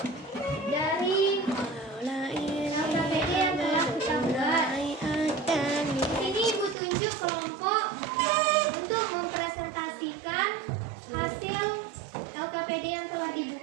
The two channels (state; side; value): drops out; left; at 6.8 s